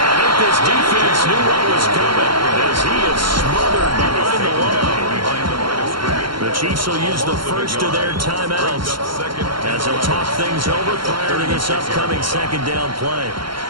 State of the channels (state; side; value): late; left; 0.73 ms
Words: think this defense knew what was coming as he is smothered behind the line. The Chiefs will use the first of their timeouts as they'll talk things over prior to this upcoming second down play.